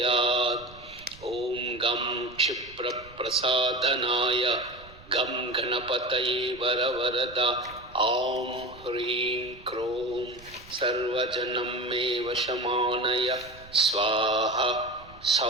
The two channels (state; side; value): noise; right; rumble, 21 dB below the sound